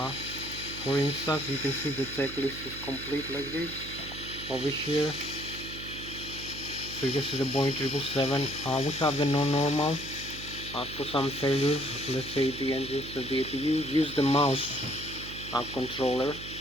For instance, you can see the checklist is complete like this over here. So you can see the Boeing 777. We have the non-normal. For some failures, let's say the engines of the APU, use the mouse controller.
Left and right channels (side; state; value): right; noise; hum, 12 dB below the sound